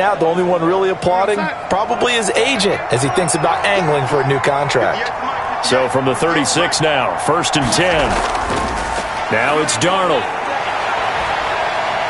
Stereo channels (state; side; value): identical; both; correlation 1.00